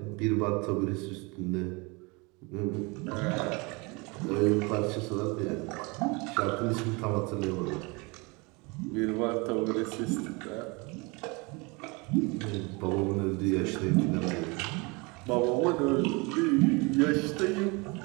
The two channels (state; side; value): quieter; left; 27.8 dB